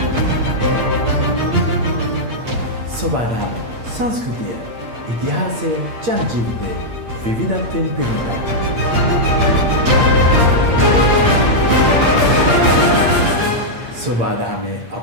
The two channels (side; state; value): left; late; 8.6 ms